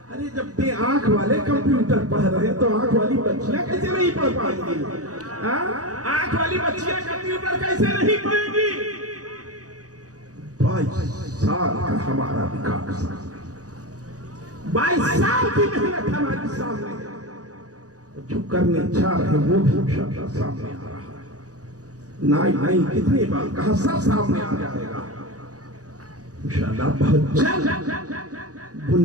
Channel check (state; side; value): late; left; 0.67 ms